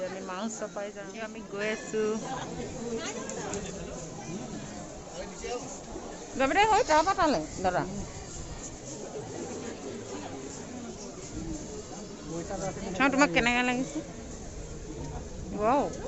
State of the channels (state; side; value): identical; both; correlation 1.00